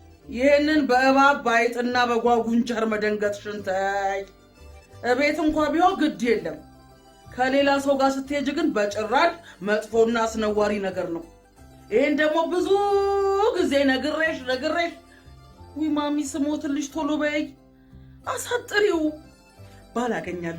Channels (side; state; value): both; identical; correlation 1.00